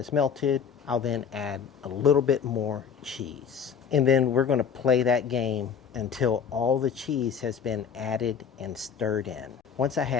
melted, I'll then add a little bit more cheese. And then we're going to play that game until all the cheese has been added and stirred in. Once I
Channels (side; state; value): right; quieter; 7.0 dB